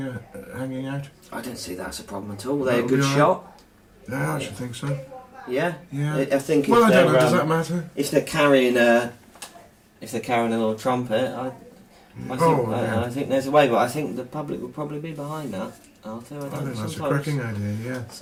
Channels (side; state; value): both; identical; correlation 1.00